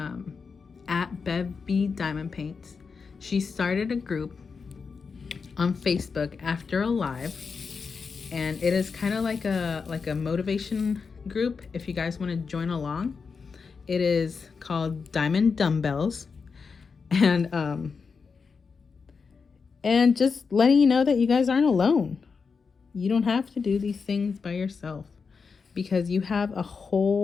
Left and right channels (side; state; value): right; quieter; 5.3 dB